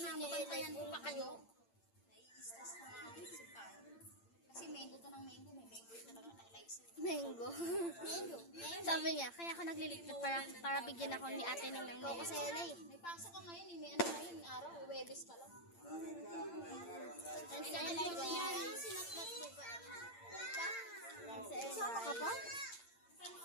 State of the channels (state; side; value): late; right; 8.8 ms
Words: niya ay like pa kayo. Kasi mango to ng mango. May mango yung talaga na-like sa'yo. Mango. Mango. Sabi niya, kaya ako naglilipat para bigyan ako ni ate ng Ikaw mango. kasi yan eh. May pasok ka ngayon eh. May ano ngayon. Araw. Webes ka lang. And sa live yan. Sinatlat mo ba? Sama ka pa?